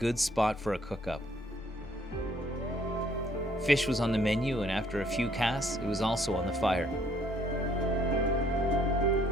spot for a cook-up. Fish was on the menu, and after a few casts, it was also on the fire.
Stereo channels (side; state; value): both; normal; correlation 0.64